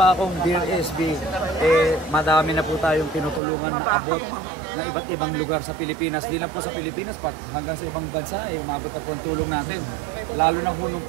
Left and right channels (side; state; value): left; drops out; at 3.4 s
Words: akong Dear SB, madami na po tayong tinutulungan na abot na iba't ibang lugar sa Pilipinas. Di lang po sa Pilipinas, hanggang sa ibang bansa, umabot na po ang tulong natin. Lalo na po nung